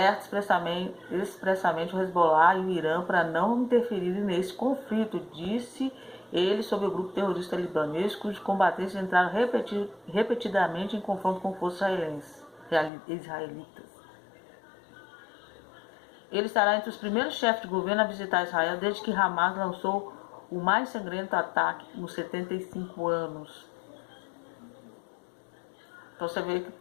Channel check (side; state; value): right; drops out; at 12.9 s